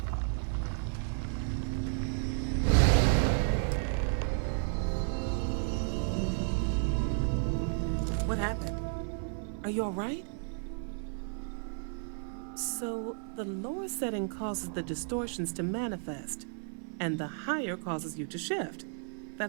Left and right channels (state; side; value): silent; left; 56 dB below the other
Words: What happened? Are you all right? So, the lower setting causes the distortions to manifest, and the higher causes you to shift.